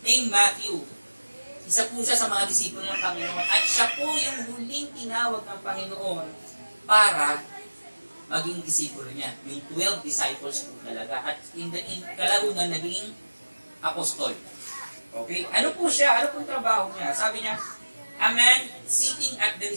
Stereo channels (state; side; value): inverted; both; correlation -1.00